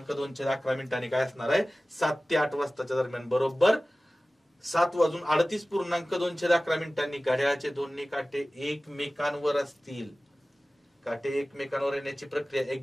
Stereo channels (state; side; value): normal; both; correlation 0.97